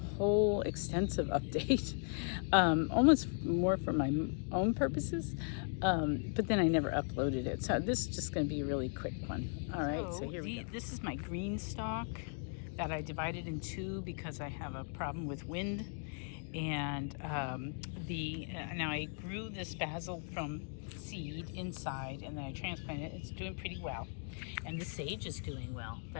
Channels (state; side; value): silent; right; 53 dB below the other